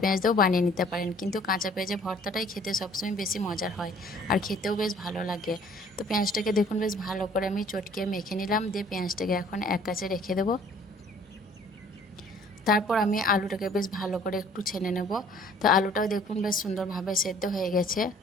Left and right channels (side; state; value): both; normal; correlation 0.55